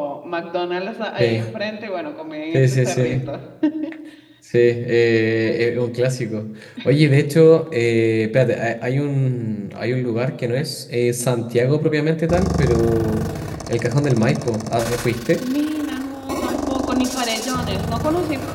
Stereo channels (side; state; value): both; identical; correlation 1.00